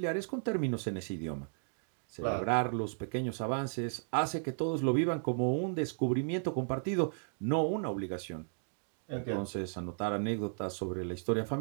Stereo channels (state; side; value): silent; left; digital silence